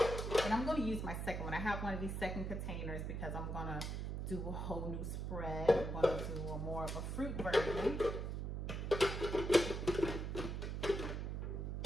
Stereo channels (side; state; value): right; noise; hum, 3 dB below the sound